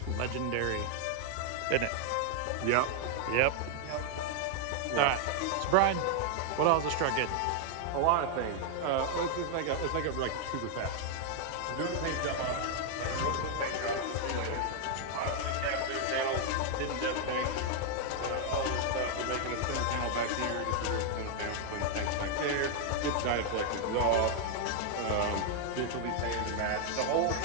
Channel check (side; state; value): both; different; correlation 0.00